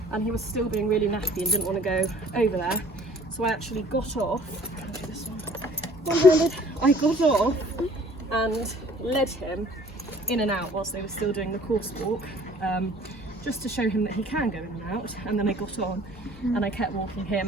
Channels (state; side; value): normal; both; correlation 0.52